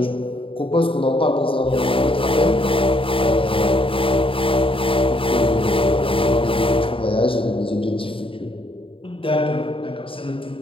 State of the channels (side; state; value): right; late; 0.26 ms